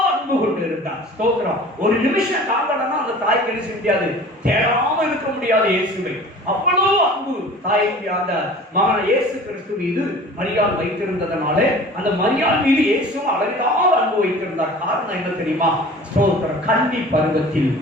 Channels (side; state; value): both; normal; correlation 0.43